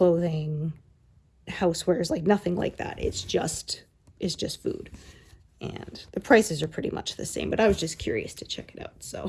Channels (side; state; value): both; identical; correlation 1.00